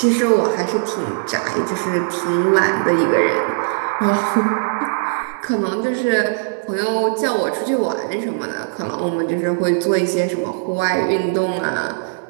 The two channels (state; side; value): silent; left; digital silence